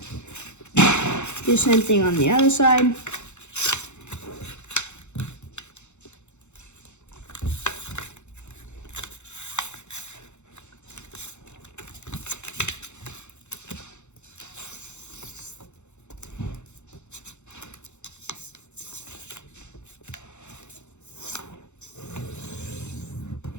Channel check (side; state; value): right; late; 0.83 ms